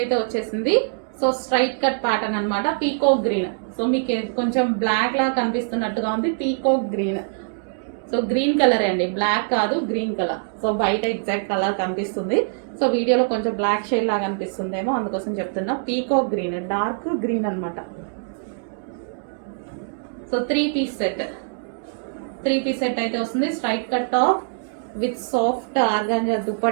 వచ్చేసింది. సో స్ట్రైట్ కట్ ప్యాటర్న్ అనమాట పీకాక్ గ్రీన్. సో మీకు కొంచెం బ్లాక్ లా కనిపిస్తున్నట్టుగా ఉంది peacock green. So green colour అండి, బ్లాక్ కాదు గ్రీన్ కలర్. సో బయట ఎగ్జాక్ట్ కలర్ కనిపిస్తుంది, సో వీడియోలో కొంచెం బ్లాక్ షేడ్ లాగా అనిపిస్తుందేమో అందుకోసం చెప్తున్నా. పీకాక్ గ్రీన్, డార్క్ గ్రీన్ అనమాట. సో 3 పీస్ సెట్ అయితే వస్తుంది. Straight cut top with soft organza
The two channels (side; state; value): left; silent; digital silence